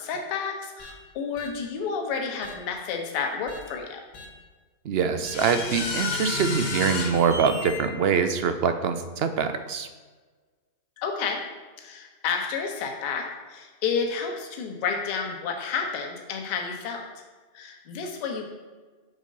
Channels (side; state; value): left; late; 2.9 ms